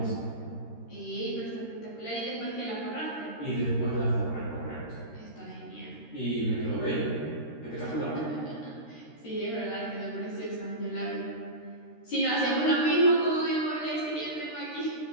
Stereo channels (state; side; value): late; right; 13 ms